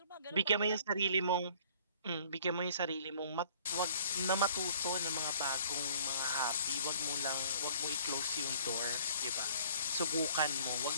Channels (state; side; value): inverted; both; correlation -0.54